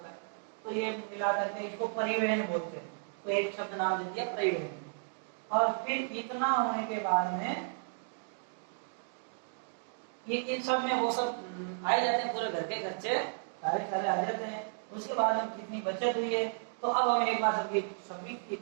है। तो ये मिला करके इसको परिवहन बोलते हैं। तो एक शब्द नाम दे दिया परिवहन। और फिर इतना होने के बाद में ये इन सब में वो सब आ जाते हैं, पूरे घर के खर्चे सारे आ जाते हैं। उसके बाद हम कितनी बचत हुई है, तो अब हम एक बार सभी की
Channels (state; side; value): silent; left; digital silence